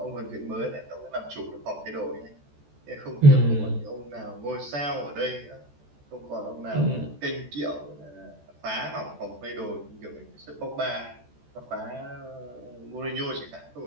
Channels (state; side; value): late; left; 14 ms